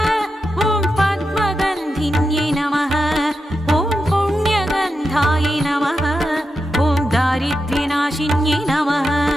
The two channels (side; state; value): both; normal; correlation 0.88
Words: ॐ पद्मगन्धिन्यै नमः ॐ पुण्यगन्धायै नमः ॐ दारिद्र्यनाशिन्यै नमः